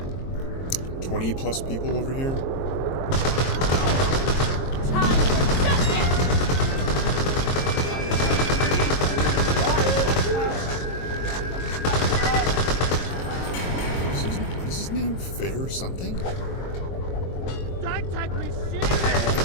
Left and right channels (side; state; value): right; late; 22 ms